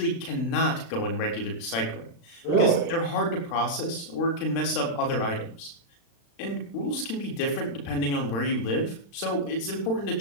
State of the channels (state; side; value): late; right; 35 ms